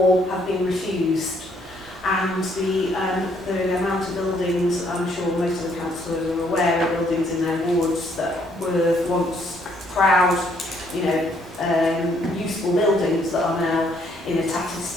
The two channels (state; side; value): normal; both; correlation 0.67